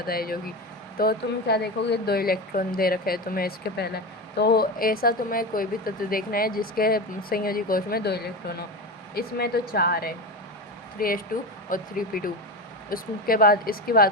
है जो कि। तो तुम क्या देखोगे, 2 इलेक्ट्रॉन दे रखे हैं तुम्हें इसके पहले। तो ऐसा तुम्हें कोई भी तत्व देखना है जिसके संयोजी कोश में 2 इलेक्ट्रॉन हो। इसमें तो 4 है, 3s2 और 3p2। उसके बाद इसकी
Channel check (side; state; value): both; normal; correlation 0.21